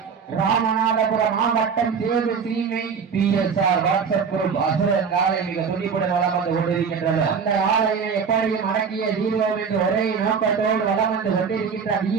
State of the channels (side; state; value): left; quieter; 6.1 dB